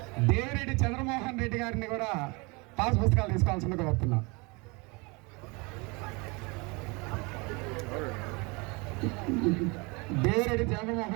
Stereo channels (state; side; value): quieter; left; 27.9 dB